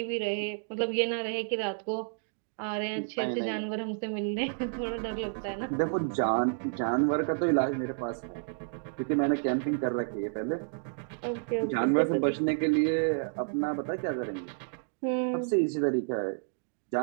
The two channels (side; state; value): left; silent; digital silence